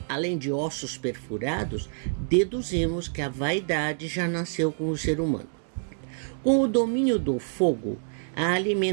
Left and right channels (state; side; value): silent; left; digital silence